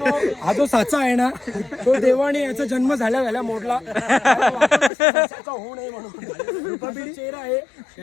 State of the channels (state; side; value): drops out; right; at 4.9 s